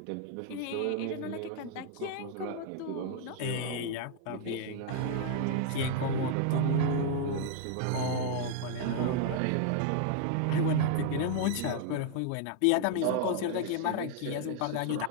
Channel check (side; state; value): both; different; correlation 0.00